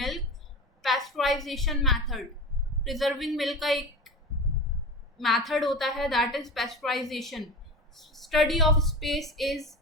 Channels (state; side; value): normal; both; correlation 0.30